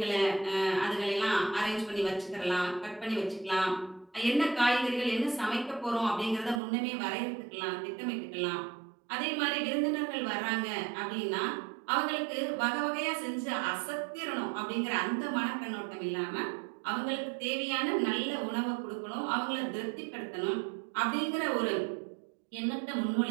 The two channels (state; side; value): drops out; left; at 6.6 s